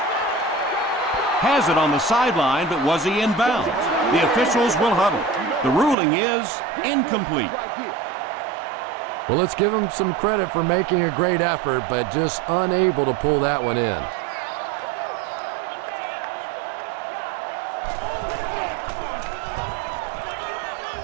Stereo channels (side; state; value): left; drops out; at 6.0 s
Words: Has it on the sideline, but was he in bounds? The officials will huddle. The ruling is incomplete. Well, let's give him some credit for making a great effort, but just unable to pull that one in.